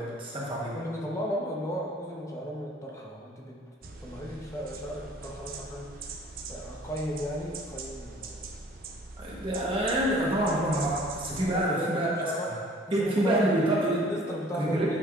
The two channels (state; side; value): normal; both; correlation 0.53